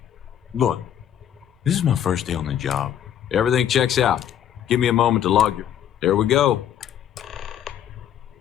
Look, this is my first day on the job. Everything checks out. Give me a moment to log your... There we go.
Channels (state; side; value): quieter; right; 10.2 dB